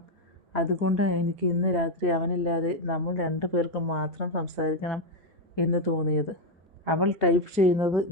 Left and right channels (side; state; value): both; normal; correlation 0.05